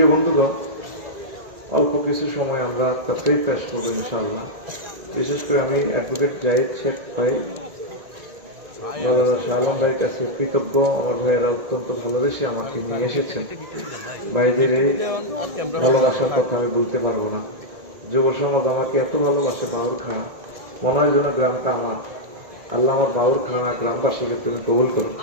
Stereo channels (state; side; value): late; left; 1.9 ms